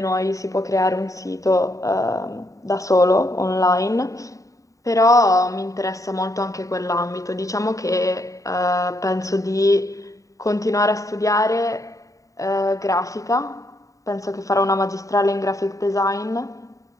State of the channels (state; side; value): late; right; 0.16 ms